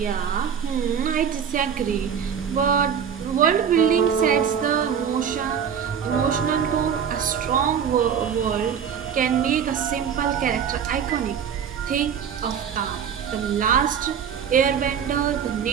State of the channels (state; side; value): quieter; left; 7.8 dB